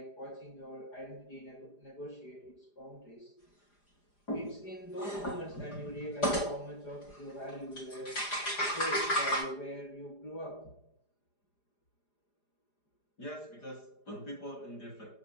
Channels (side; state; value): right; late; 4.9 ms